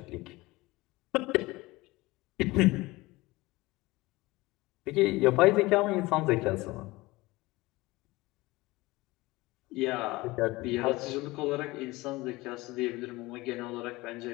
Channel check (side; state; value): right; quieter; 21.0 dB